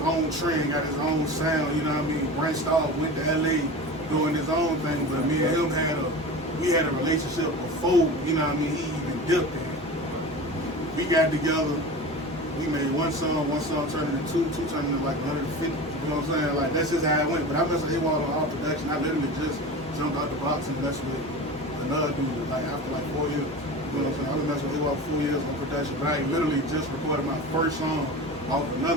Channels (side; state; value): both; normal; correlation 0.32